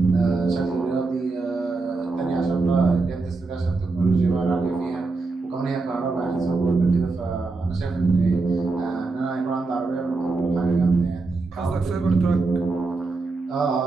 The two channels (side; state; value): left; quieter; 3.8 dB